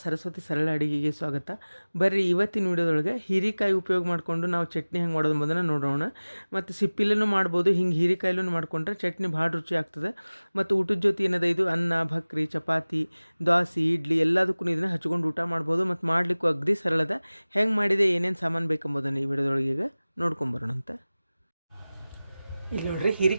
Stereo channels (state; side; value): inverted; both; correlation -0.99